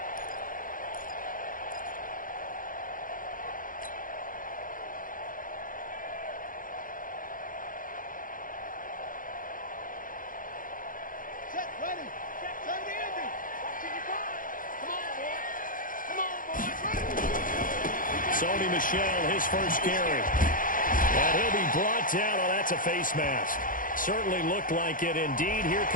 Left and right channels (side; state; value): right; late; 0.40 ms